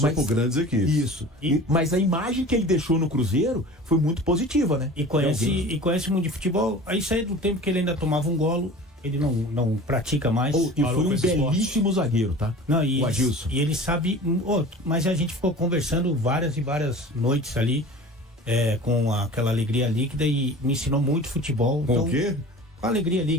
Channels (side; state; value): both; normal; correlation 0.39